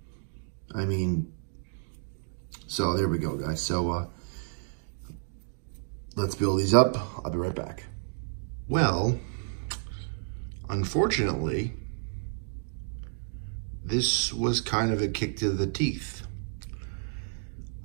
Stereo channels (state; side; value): silent; left; digital silence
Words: I mean, so there we go, guys. So let's build these up. I'll be right back. Well, unfortunately, this was kind of a kick to the teeth.